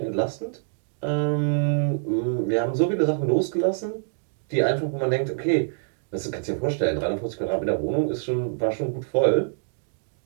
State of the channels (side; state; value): left; silent; digital silence